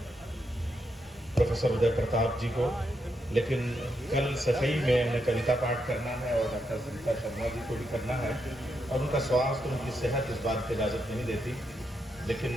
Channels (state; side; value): normal; both; correlation 0.82